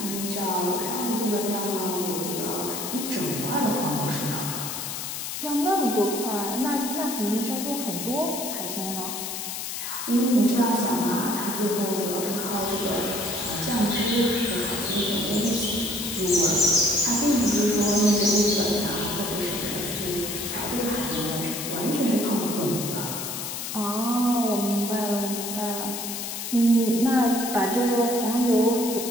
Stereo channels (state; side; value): noise; left; hiss, 5 dB below the sound